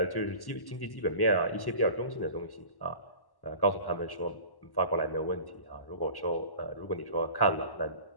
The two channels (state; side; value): late; right; 1.1 ms